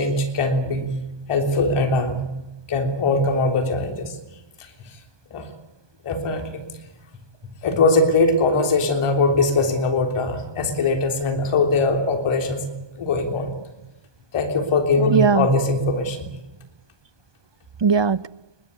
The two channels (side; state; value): left; late; 1.2 ms